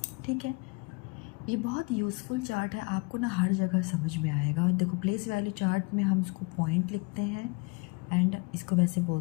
ठीक है, ये बहुत यूज़फुल चार्ट है, आपको ना हर जगह समझ में आएगा। और देखो, प्लेस वैल्यू चार्ट में हम इसको पॉइंट लिखते हैं एंड इसको वैसे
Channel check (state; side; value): quieter; right; 29.0 dB